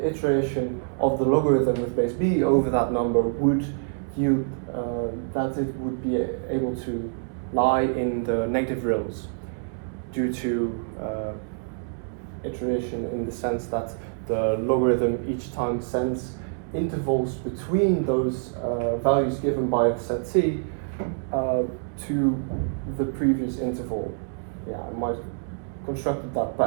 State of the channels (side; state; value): left; silent; 61 dB below the other